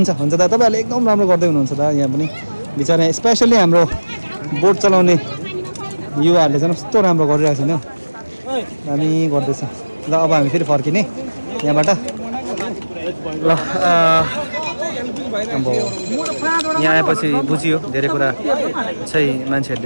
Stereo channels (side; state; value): both; inverted; correlation -1.00